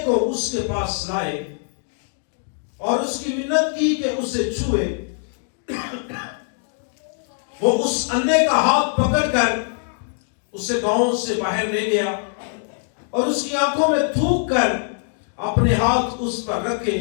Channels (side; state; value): right; silent; 64 dB below the other